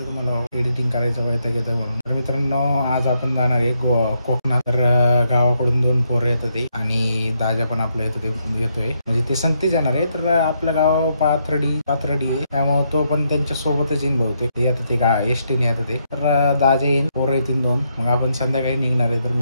तुम्हाला, एडिटिंग करायचं वैताग येतं म्हणून. तर मित्रांनो, आज आपण जाणार आहे कोकणात. तर गावाकडून 2 पोरं येतात ते आणि दाजा पण आपल्या येतोय म्हणजे ते संगतीच येणार आहे. तर आपलं गाव पाथर्डी आहे, त्यामुळे तो पण त्यांच्या सोबतच येईन बहुतेक. येतं ते एसटीने येतं ते. तर दाजा येईन, पोरं येतील 2. मग आपण संध्याकाळी निघणार आहे. तर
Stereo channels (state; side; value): inverted; both; correlation -0.78